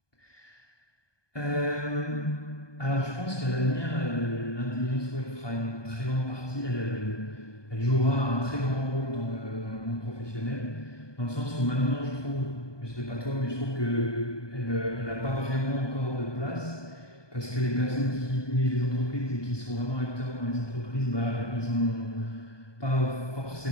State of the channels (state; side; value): late; right; 1.2 ms